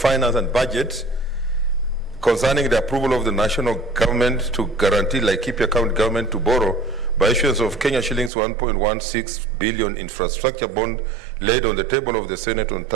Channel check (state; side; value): drops out; left; at 8.3 s